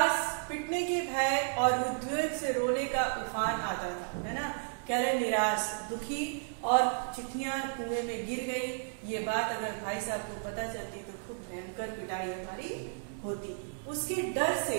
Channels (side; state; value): left; silent; 56 dB below the other